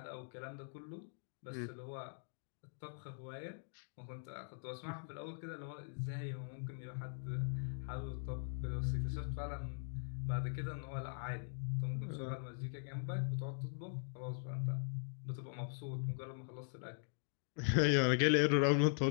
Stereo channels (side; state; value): right; silent; digital silence